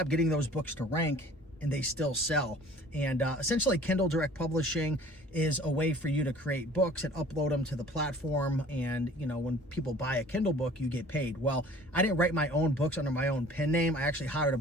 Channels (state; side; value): normal; both; correlation 0.49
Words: getting those books to rank, and they still sell. And essentially Kindle Direct Publishing is a way for you to create books and upload them to the platform. And you know, when people buy a Kindle book, you get paid. Well, I didn't write my own books under my own pen name. I actually hired a